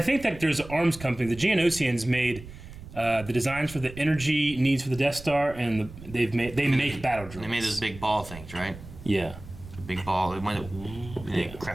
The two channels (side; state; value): right; noise; rumble, 15 dB below the sound